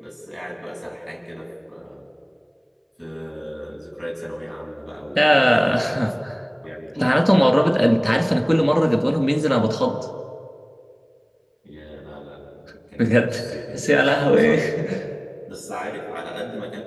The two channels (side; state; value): both; identical; correlation 1.00